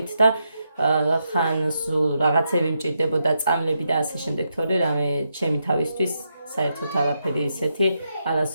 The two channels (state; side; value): inverted; both; correlation -0.83